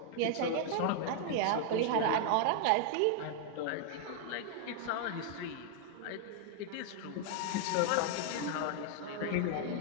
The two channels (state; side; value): different; both; correlation 0.00